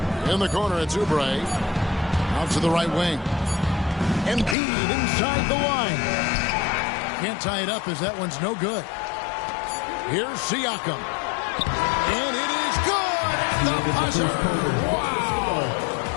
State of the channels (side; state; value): right; drops out; at 4.5 s